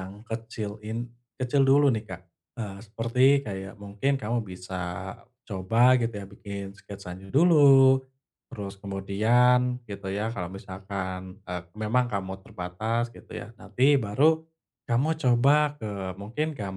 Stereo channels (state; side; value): identical; both; correlation 1.00